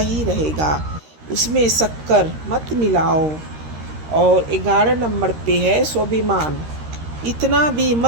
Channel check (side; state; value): left; late; 13 ms